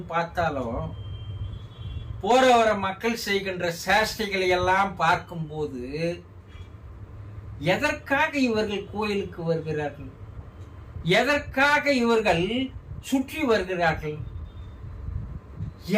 பார்த்தாலும், போற வர மக்கள் செய்கின்ற சேஷ்டைகளை எல்லாம் பார்க்கும்போது எதற்காக இவர்கள் கோயிலுக்கு வருகிறார்கள், எதற்காக இவர்கள் சுற்றி வருகிறார்கள்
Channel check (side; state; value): both; identical; correlation 1.00